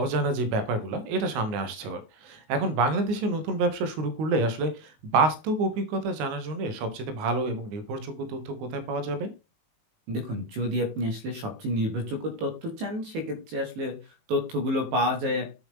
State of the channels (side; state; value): left; late; 19 ms